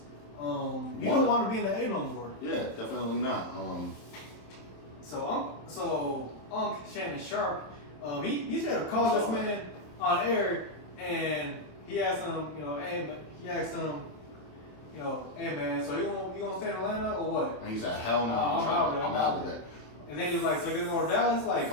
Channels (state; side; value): late; right; 27 ms